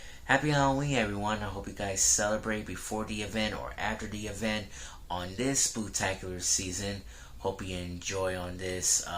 Happy Halloween, everyone. I hope you guys celebrate before the event or after the event on this spooktacular season. Hope you enjoy on this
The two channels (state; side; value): identical; both; correlation 1.00